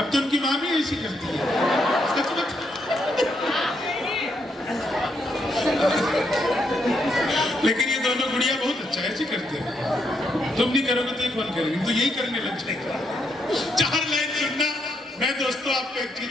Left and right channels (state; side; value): normal; both; correlation 0.77